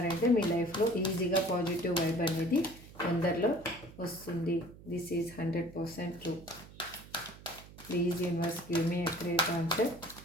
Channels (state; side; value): noise; right; hum, 19 dB below the sound